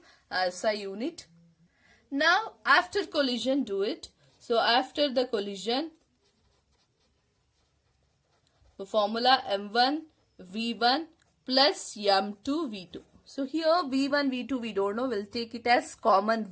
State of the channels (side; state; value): both; identical; correlation 1.00